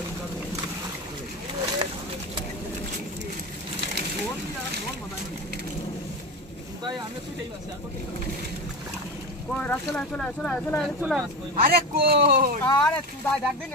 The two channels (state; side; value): normal; both; correlation 0.23